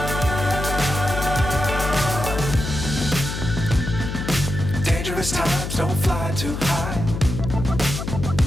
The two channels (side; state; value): left; noise; hum, 5 dB below the sound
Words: Times don't fly too high.